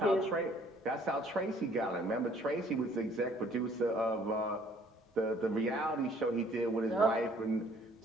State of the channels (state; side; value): normal; both; correlation 0.59